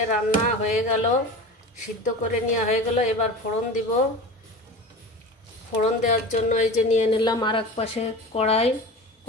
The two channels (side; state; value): both; normal; correlation 0.32